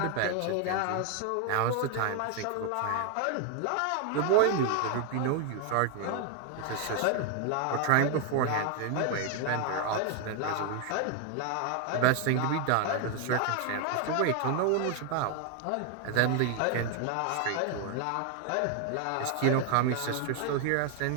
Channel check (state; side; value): different; both; correlation 0.00